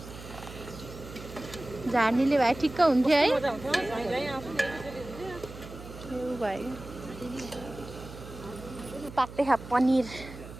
झार्नीले भए ठिक्क हुन्थ्यो है भयो पाक्दै खा पनिर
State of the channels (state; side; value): noise; right; hum, 14 dB below the sound